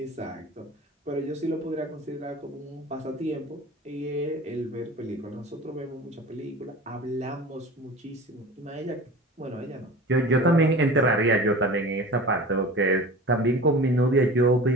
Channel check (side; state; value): both; normal; correlation 0.37